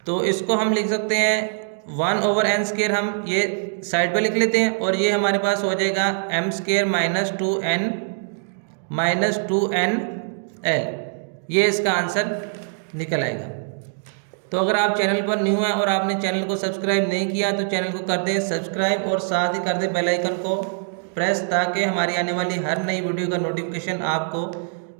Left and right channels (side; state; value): left; silent; digital silence